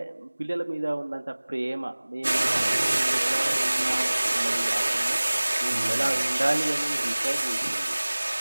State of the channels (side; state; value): both; inverted; correlation -1.00